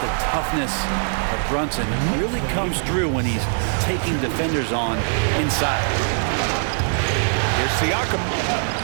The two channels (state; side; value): silent; left; 64 dB below the other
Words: toughness of Brunson. It really comes through when he's taking defenders on inside. Here's Siakam.